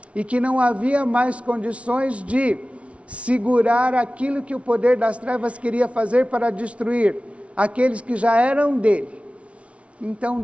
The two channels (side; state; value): left; late; 0.062 ms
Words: e que não havia mais condições de segurar aquilo que o poder das trevas queria fazer para destruir aqueles que já eram dele, então